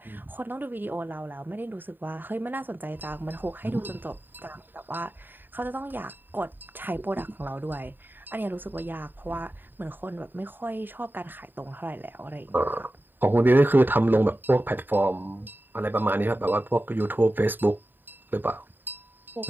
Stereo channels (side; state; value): left; late; 0.093 ms